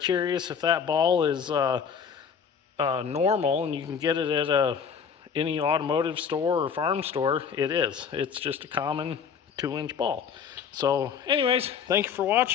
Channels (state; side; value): quieter; right; 6.9 dB